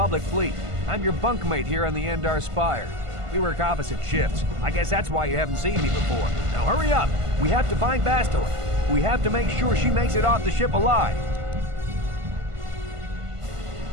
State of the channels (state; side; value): late; left; 1.5 ms